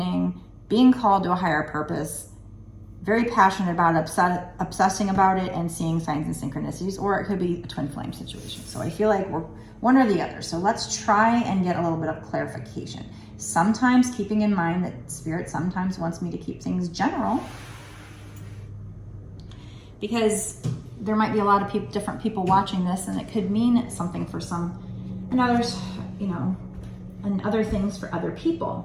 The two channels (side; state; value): both; identical; correlation 1.00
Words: being called to a higher purpose, very passionate about it, obsessing about it and seeing signs and synchronicities, or it could be a twin flame situation. So I feel like we're one or the other. So let's try and get a little bit of clarification. Sometimes keeping in mind that Spirit sometimes wants me to keep things general, because there might be a lot of different people watching this, and it could mean something for some, and others, you know, and other things for other